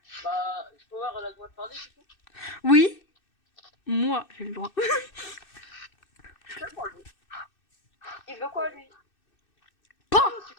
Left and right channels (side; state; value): right; late; 2.6 ms